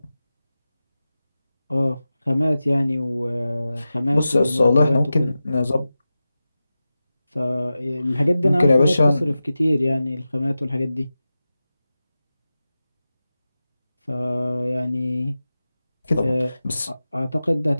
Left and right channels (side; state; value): both; inverted; correlation -0.94